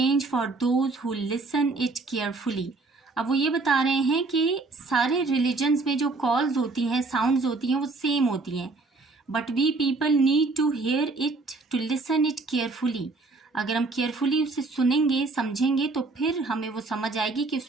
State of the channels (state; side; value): quieter; left; 3.6 dB